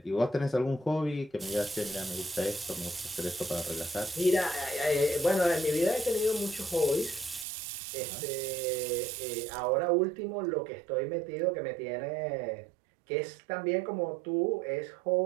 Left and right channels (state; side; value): drops out; left; at 7.5 s